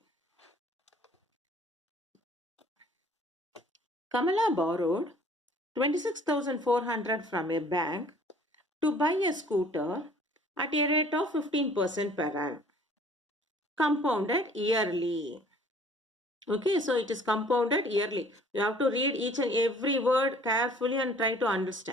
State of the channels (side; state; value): both; normal; correlation 0.54